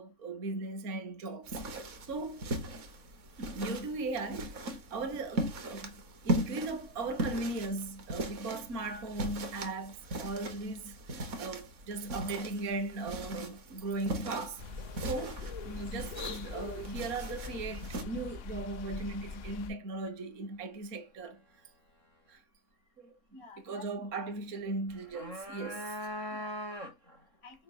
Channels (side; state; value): left; late; 3.6 ms